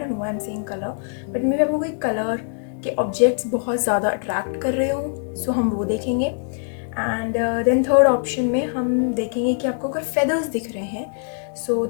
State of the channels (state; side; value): silent; right; digital silence